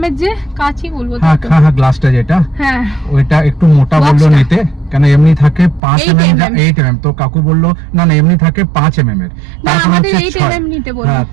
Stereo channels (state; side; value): drops out; left; at 5.8 s